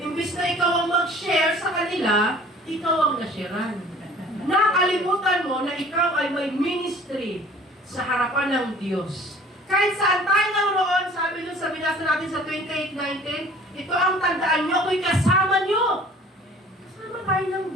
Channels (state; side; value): normal; both; correlation 0.50